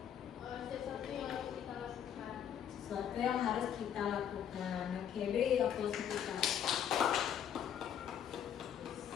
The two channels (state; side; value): quieter; right; 9.2 dB